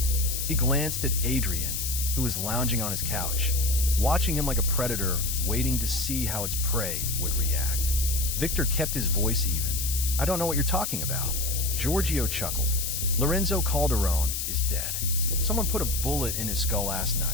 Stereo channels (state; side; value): noise; left; hiss, 2 dB below the sound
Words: He glanced at Adrian, who was lounging on his couch, watching him like a predator, waiting to see how its prey would react. Victor kept his voice even. "I don't know what you're talking about." Giorgio chuckled. "Lorenzo Calderone is dead. Someone put a bullet in his skull last